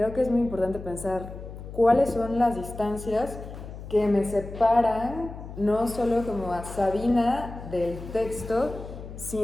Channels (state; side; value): noise; left; hum, 12 dB below the sound